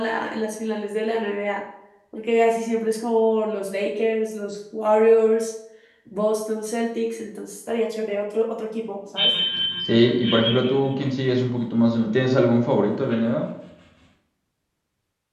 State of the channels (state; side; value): identical; both; correlation 1.00